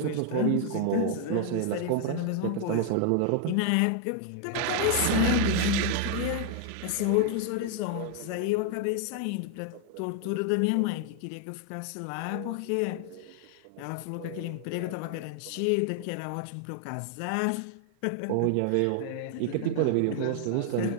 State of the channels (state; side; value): different; both; correlation 0.00